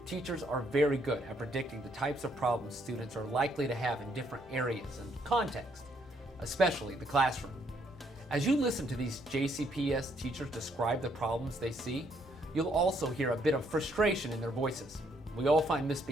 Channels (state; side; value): normal; both; correlation 0.70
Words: Teachers are very good at predicting the types of problems students are likely to have in different areas and contexts, especially the classroom. As you listen to these JCPS teachers describe the problems they see, you'll also hear a bit of frustration in their voices. We all find